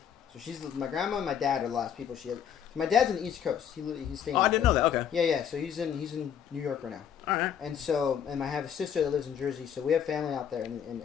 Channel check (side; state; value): right; quieter; 8.5 dB